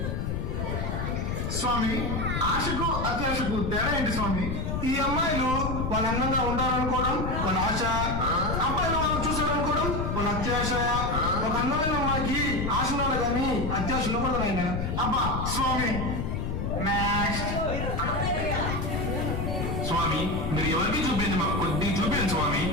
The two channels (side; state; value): left; noise; rumble, 2 dB below the sound